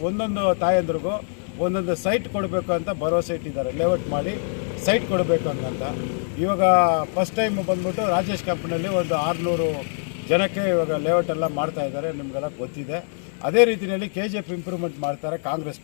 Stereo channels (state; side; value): silent; right; 63 dB below the other